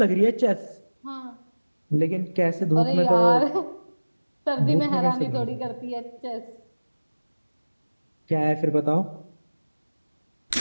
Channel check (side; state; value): both; inverted; correlation -1.00